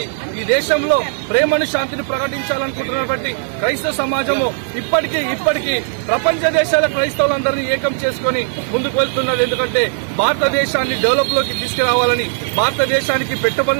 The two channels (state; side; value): silent; left; digital silence